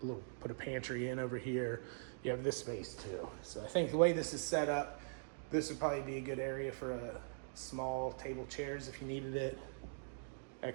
put a pantry in over here, you have this space too. So I think the way this is set up, this would probably be a good area for a small table chairs if you needed it,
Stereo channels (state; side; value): silent; left; digital silence